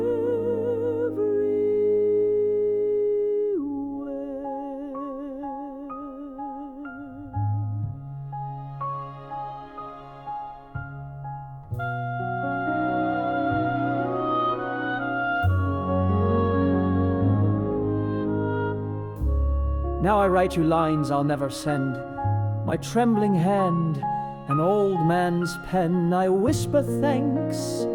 Now I write you lines I'll never send, My trembling hand, an old man's pen, I whisper thanks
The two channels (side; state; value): both; identical; correlation 1.00